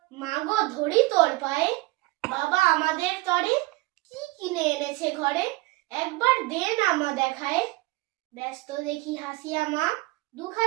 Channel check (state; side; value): quieter; left; 21.5 dB